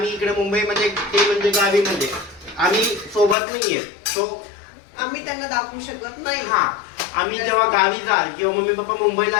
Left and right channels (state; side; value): drops out; right; at 3.4 s